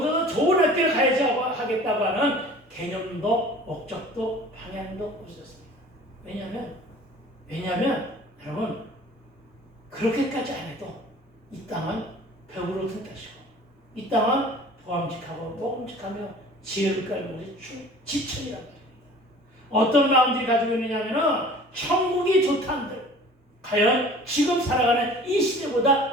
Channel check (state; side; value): normal; both; correlation 0.46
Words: 더 좋은 학교를 가야지 하겠다고 하는 개념도 목적도 방향도 없었습니다. 왜냐하면 여러분 그렇게까지 안 해도 이 땅은 벽으로 튼다시고 이 땅은 보암직하고 먹음직하며 지혜를 깔고 지천이란 말입니다. 어떤 마음들이 가지고 있느냐면은 천국이 좋다는들 과연 지금 살아가는 이